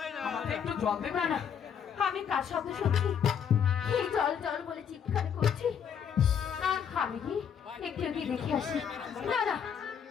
আমাকে একটু জল দেবে? না না, আমি কার শব্দ শুনছি? এই জল জল বলে চিৎকার করছি। আমি কি একটু কি দেখে আসি? না না,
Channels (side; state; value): right; quieter; 7.9 dB